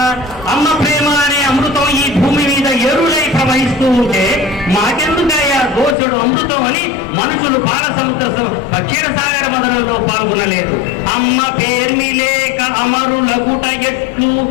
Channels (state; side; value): drops out; right; at 6.0 s